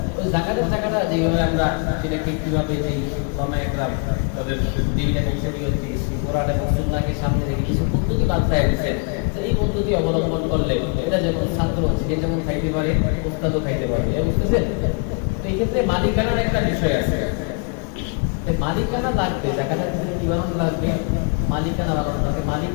ওই জাকাতের টাকাটা যেভাবে আমরা সেটাকে কিভাবে যে একরাম তাদের দিন এবং শরীয়ত কোরআন এবং সুন্নাহকে সামনে রেখে কিছু পদ্ধতি বাতলায় দিয়েছেন, এই পদ্ধতি অবলম্বন করলে এটা যেমন ছাত্র সে যেমন খাইতে পারে, ওস্তাদও খাইতে পারে, বুঝতেছেন? তো এই ক্ষেত্রে মালিকানার একটা বিষয় আছে। মালিকানা লাগবে, জাকাতের ক্ষেত্রে কি বানানো লাগবে? মালিকানা বানানো লাগবে, মালিক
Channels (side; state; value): right; quieter; 35.5 dB